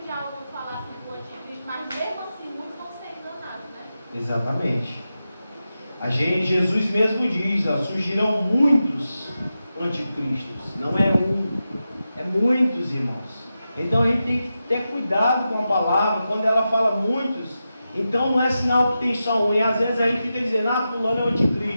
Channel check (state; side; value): inverted; both; correlation -0.91